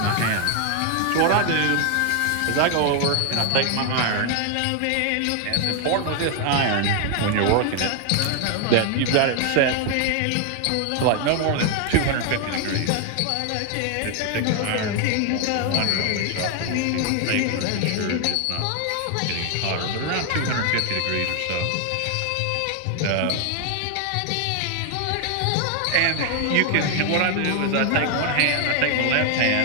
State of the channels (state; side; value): different; both; correlation 0.00